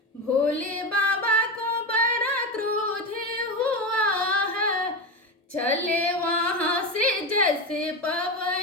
भोले बाबा को बड़ा क्रोध हुआ है। चले वहाँ से जैसे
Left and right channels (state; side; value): normal; both; correlation 0.19